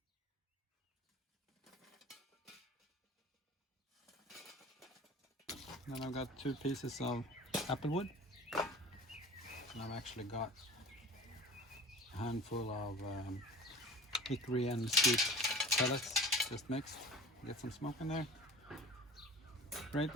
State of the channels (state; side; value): normal; both; correlation 0.39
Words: Then I've got 2 pieces of applewood. And I've actually got a handful of hickory and mesquite pellets just mixed. Get some smoke in there. Grate